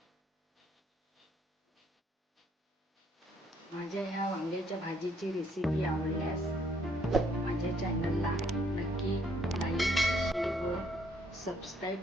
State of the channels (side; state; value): both; normal; correlation 0.67